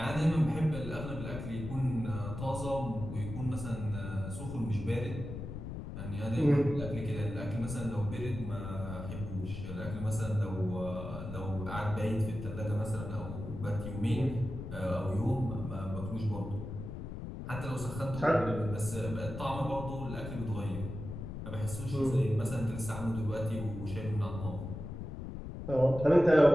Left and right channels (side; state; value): left; noise; rumble, 8 dB below the sound